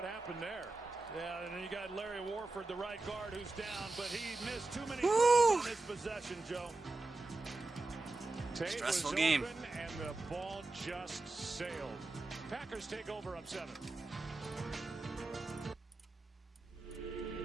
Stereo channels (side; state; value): left; quieter; 3.2 dB